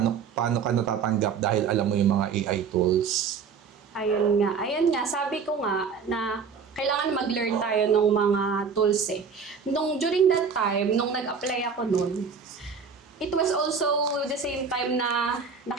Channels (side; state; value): left; quieter; 5.9 dB